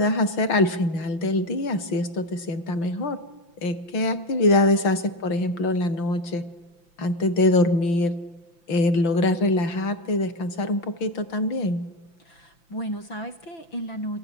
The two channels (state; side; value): late; right; 5.9 ms